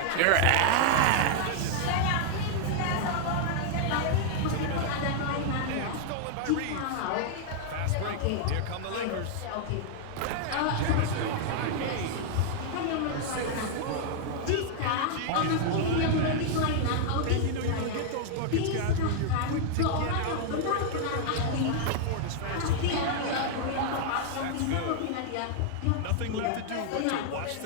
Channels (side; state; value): both; different; correlation -0.01